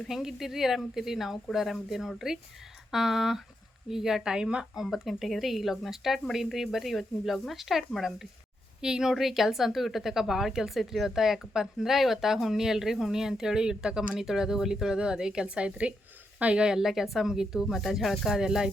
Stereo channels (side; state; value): both; normal; correlation 0.82